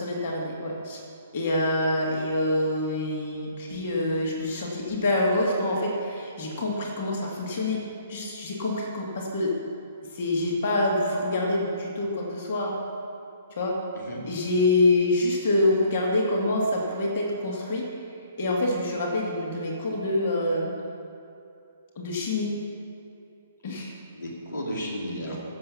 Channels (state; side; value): inverted; both; correlation -0.61